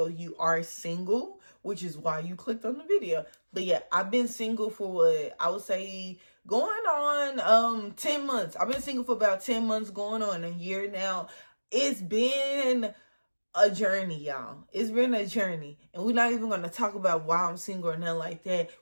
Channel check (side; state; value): both; inverted; correlation -1.00